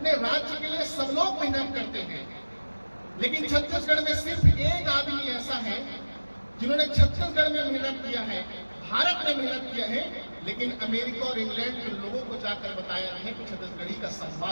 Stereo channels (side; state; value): both; inverted; correlation -1.00